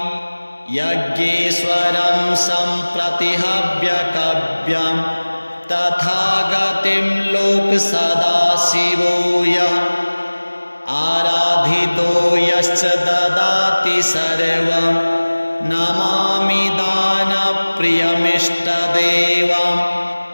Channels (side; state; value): both; inverted; correlation -1.00